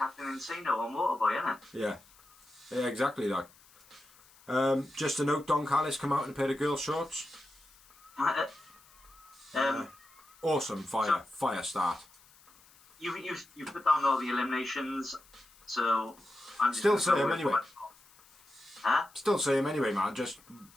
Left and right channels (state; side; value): noise; left; hiss, 27 dB below the sound